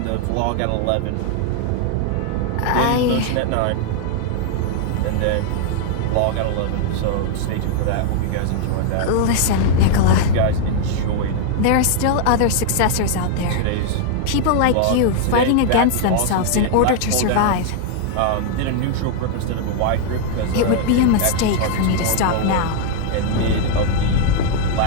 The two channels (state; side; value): different; both; correlation 0.00